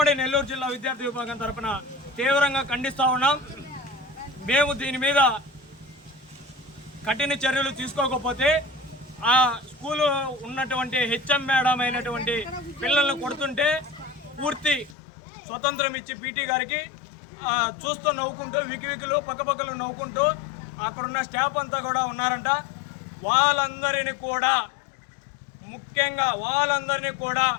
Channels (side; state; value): right; drops out; at 15.0 s